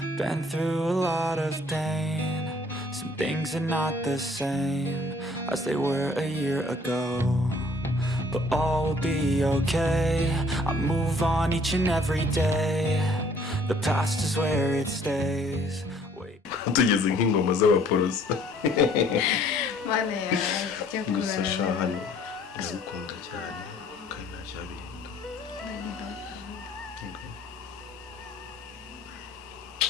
been through a lot of pain. Some things are not the same as they were a year ago, but all will be okay. I move on each and every day. The past is where it stays. Tugeze nk'ingoma z'abaporoso. Mane ya cyo gusa shahani ndagukunda cyane kandi ntacyabinda.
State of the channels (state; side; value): normal; both; correlation 0.59